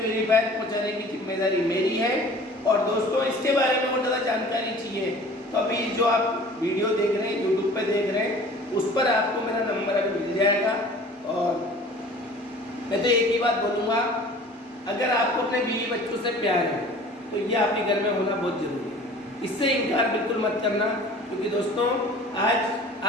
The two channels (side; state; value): both; normal; correlation 0.46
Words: पहुंचाने की जिम्मेदारी मेरी है। और दोस्तों, इसके बारे में और ज़्यादा जानकारी चाहिए तो अभी जो आप वीडियो देख रहे हैं, यूट्यूब पे देख रहे हैं, उस पर आपको मेरा नंबर अभी मिल जाएगा। और मैं तो एक ही बात बोलूँगा, अगर आपको अपने बीवी बच्चों से प्यार है तो ये आपके घर में होना बहुत जरूरी है। इससे इनकार बिल्कुल मत करना, क्योंकि दोस्तों आज